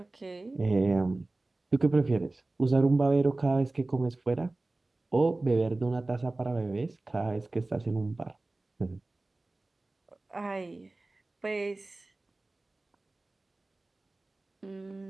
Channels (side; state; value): left; quieter; 3.0 dB